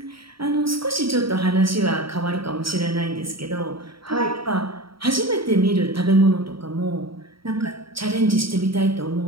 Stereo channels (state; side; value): late; left; 0.75 ms